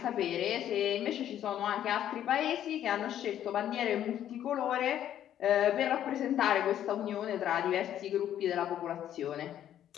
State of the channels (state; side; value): quieter; right; 11.0 dB